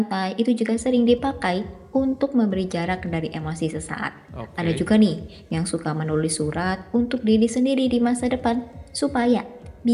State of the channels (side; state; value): both; identical; correlation 1.00